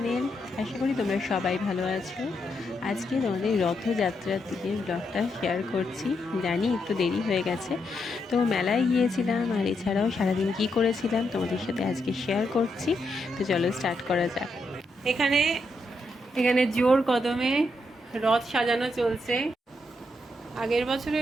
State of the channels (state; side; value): normal; both; correlation 0.81